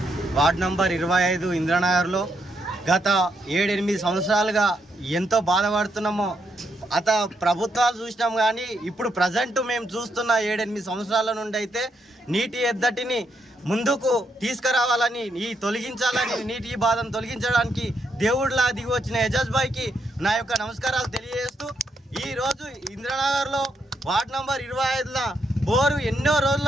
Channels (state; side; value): normal; both; correlation 0.78